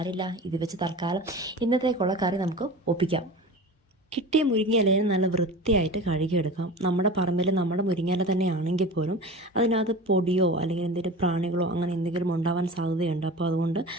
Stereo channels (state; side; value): normal; both; correlation 0.34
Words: ഇത് വെച്ച് തൽക്കാലം ഇന്നത്തേക്കുള്ള കറി നമുക്ക് ഒപ്പിക്കാം. കിട്ടിയ മുരിങ്ങയിലയെ നല്ല വൃത്തിയായിട്ട് കഴുകിയെടുക്കാം. നമ്മുടെ പറമ്പിൽ നമ്മുടെ മുരിങ്ങയില തന്നെ ആണെങ്കിൽ പോലും അതിനകത്ത് പൊടിയോ അല്ലെങ്കിൽ എന്തെങ്കിലും പ്രാണികളോ അങ്ങനെ എന്തെങ്കിലും ഉണ്ടാവാൻ സാധ്യതയുണ്ട്. അപ്പോൾ അതുകൊണ്ട്